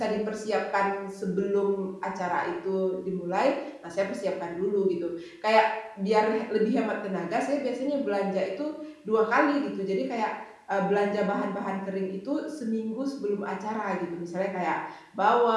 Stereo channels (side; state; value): both; identical; correlation 1.00